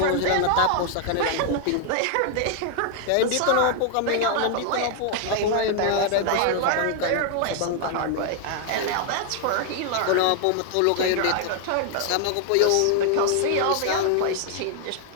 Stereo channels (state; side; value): different; both; correlation 0.00